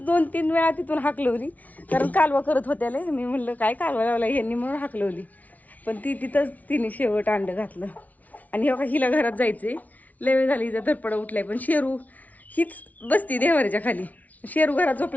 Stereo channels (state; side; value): late; right; 0.073 ms